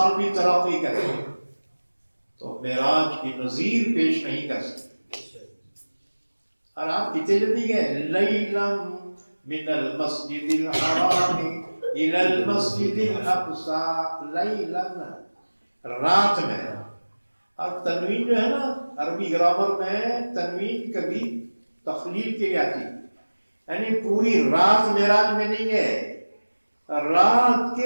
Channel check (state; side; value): inverted; both; correlation -1.00